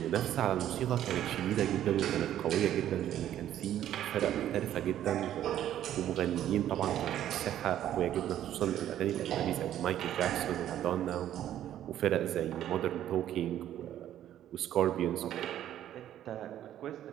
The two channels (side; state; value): left; quieter; 11.6 dB